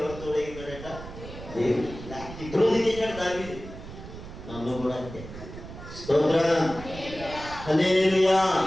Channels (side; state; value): right; noise; rumble, 13 dB below the sound